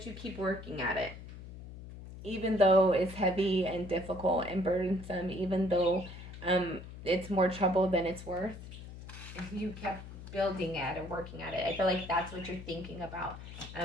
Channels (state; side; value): noise; left; hum, 13 dB below the sound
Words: you keep working at it. Even though it's heavy and difficult and burdensome, even though it's more trouble than it's worth, you kept building at it, working at it. I feel like that's what you're thinking about.